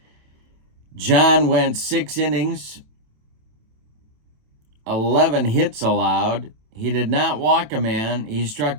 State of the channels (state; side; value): late; left; 27 ms